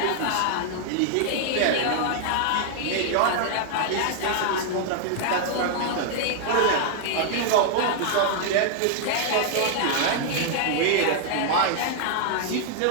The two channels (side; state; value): both; different; correlation -0.01